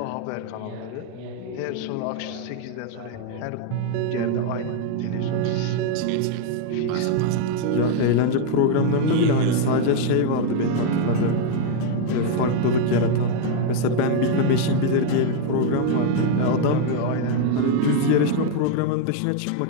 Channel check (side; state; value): both; different; correlation 0.00